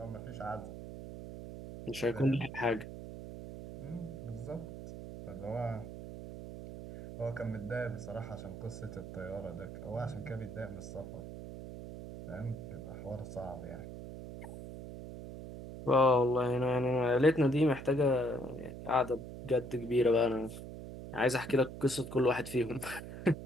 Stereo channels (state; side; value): noise; right; hum, 10 dB below the sound